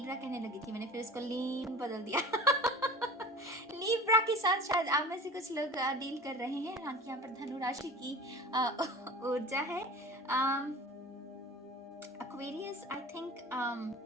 कहने लगी थी, मैंने फिर इसको लीन बदल दिया। लिब्रा के साथ शायद आप में से कुछ लोग डील कर रहे हैं। हालांकि यहाँ पर धनु राशि की ऊर्जा है। एक्वेरियस, आई थिंक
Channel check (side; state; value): both; normal; correlation 0.39